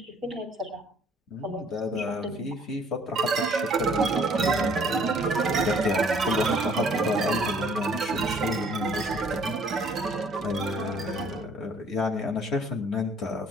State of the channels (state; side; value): normal; both; correlation 0.58